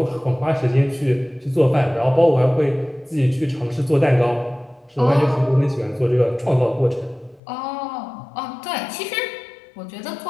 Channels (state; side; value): drops out; right; at 7.4 s